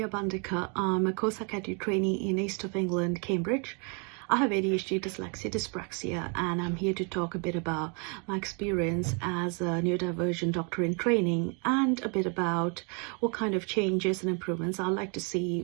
Bandecar. I'm a Psychiatric Trainee in East of England, Cambridge. I have ADHD, dyslexia, dyspraxia, and I'm here to talk a bit about my experience as a neurodivergent doctor in training and a bit about what kind of changes and improvements I'd like to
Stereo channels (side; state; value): left; quieter; 36.1 dB